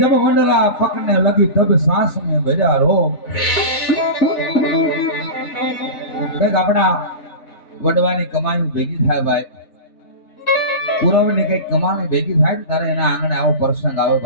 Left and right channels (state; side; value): late; right; 4.1 ms